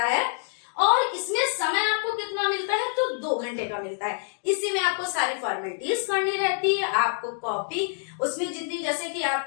है, और इसमें समय आपको कितना मिलता है, तो 2 घंटे का मिलता है। इसी में आपको सारी फॉर्मेलिटीज करनी रहती है, आपको कॉपी उसमें जितनी, जैसे कि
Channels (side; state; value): right; silent; digital silence